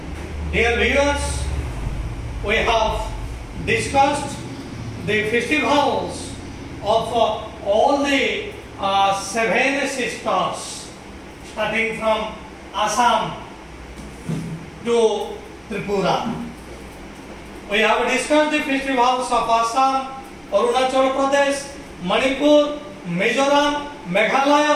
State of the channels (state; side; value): identical; both; correlation 1.00